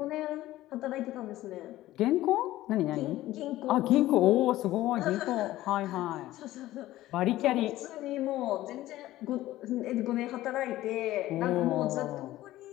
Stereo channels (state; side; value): quieter; right; 15.6 dB